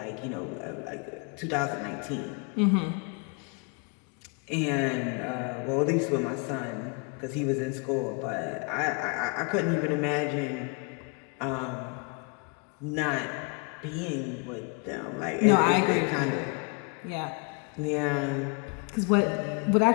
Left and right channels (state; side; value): quieter; right; 34.0 dB